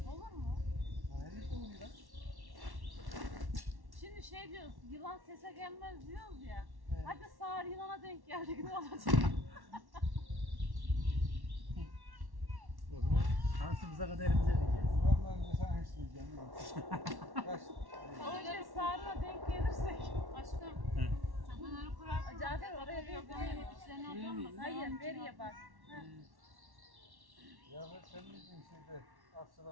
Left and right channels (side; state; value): left; late; 1.1 ms